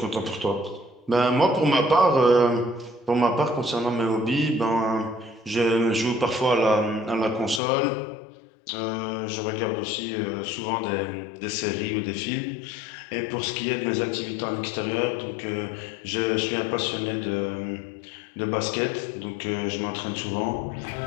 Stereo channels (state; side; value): drops out; right; at 7.6 s